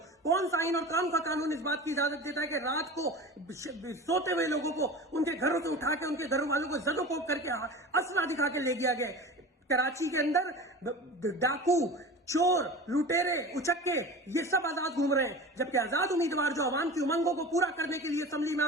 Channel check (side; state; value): both; normal; correlation 0.34